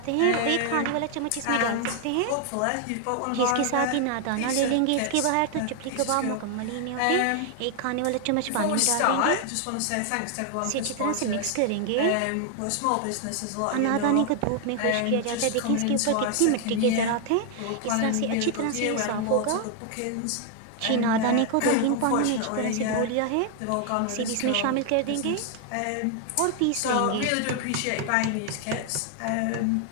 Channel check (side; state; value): both; different; correlation 0.00